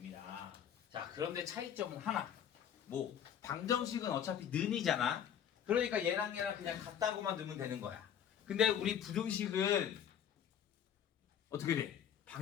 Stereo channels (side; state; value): right; quieter; 9.1 dB